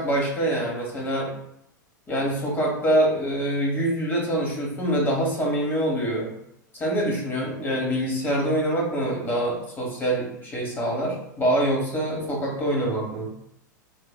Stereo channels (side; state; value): both; normal; correlation 0.16